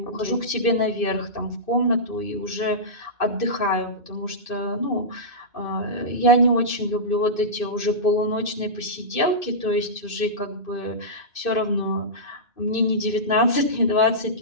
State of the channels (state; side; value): late; right; 2.6 ms